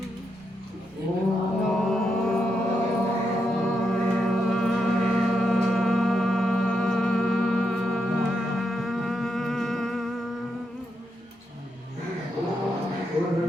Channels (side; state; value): both; normal; correlation 0.83